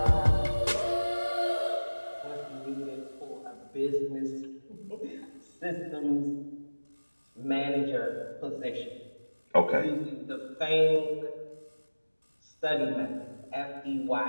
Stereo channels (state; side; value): inverted; both; correlation -1.00